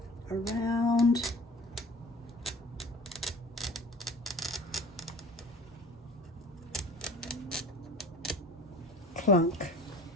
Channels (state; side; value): normal; both; correlation 0.43